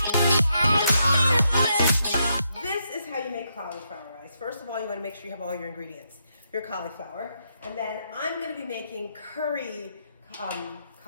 This is how you make cauliflower rice. First of all, you want to make sure you have all your ingredients. Your cauliflower, and then I'm going to be making curry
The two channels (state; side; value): inverted; both; correlation -0.79